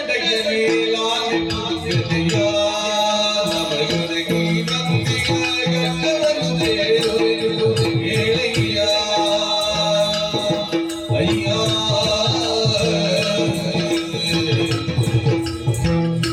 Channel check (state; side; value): identical; both; correlation 1.00